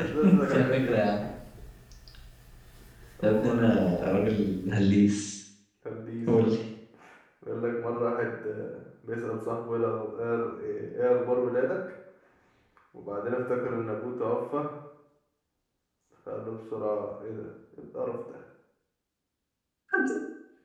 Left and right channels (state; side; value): identical; both; correlation 1.00